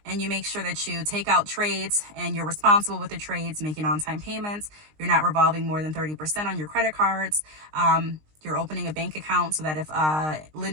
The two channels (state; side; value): late; left; 19 ms